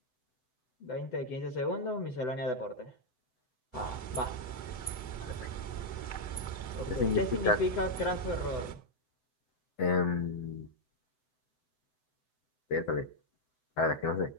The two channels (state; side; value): late; right; 7.9 ms